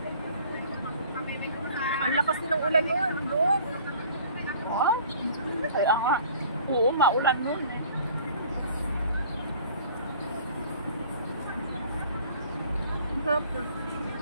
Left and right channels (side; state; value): both; inverted; correlation -0.50